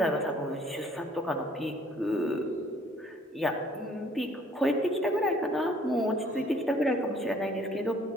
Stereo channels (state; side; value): normal; both; correlation 0.59